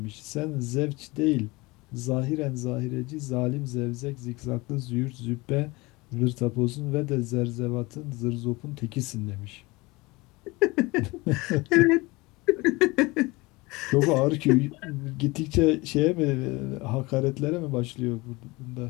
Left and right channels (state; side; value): quieter; right; 23.3 dB